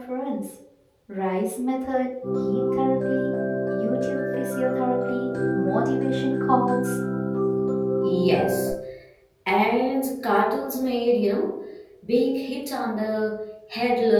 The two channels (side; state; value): both; identical; correlation 1.00